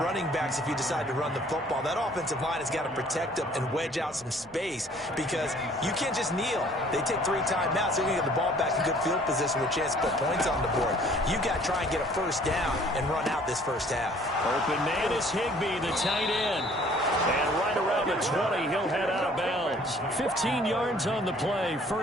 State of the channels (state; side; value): normal; both; correlation 0.56